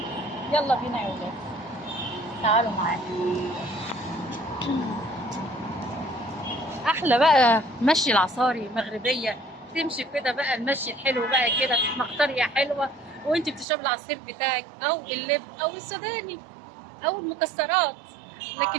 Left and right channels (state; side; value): drops out; left; at 13.7 s